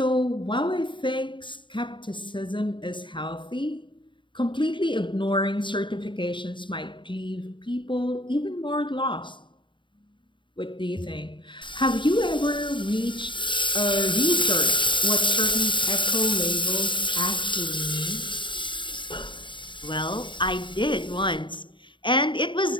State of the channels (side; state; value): right; late; 0.23 ms